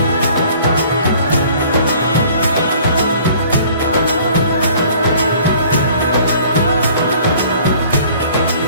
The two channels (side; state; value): both; inverted; correlation -0.53